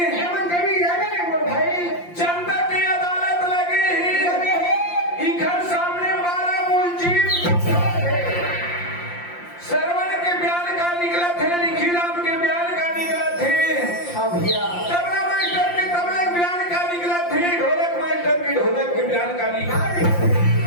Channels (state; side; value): late; right; 5.7 ms